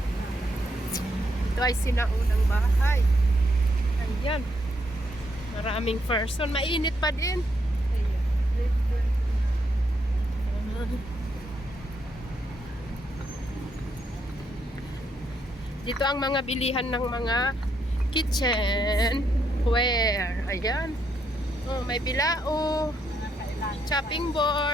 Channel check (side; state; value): both; normal; correlation 0.77